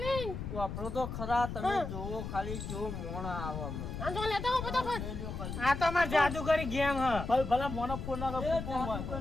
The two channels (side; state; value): left; noise; rumble, 6 dB below the sound